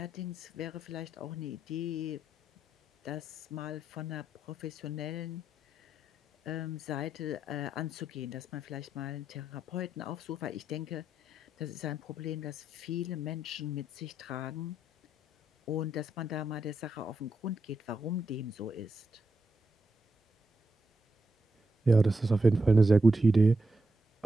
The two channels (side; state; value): both; normal; correlation 0.83